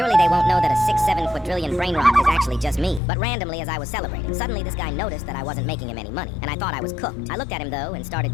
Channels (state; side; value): drops out; right; at 3.0 s